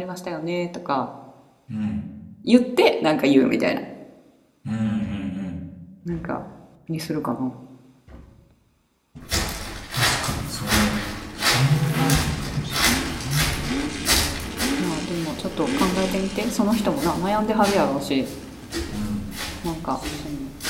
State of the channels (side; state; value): both; identical; correlation 1.00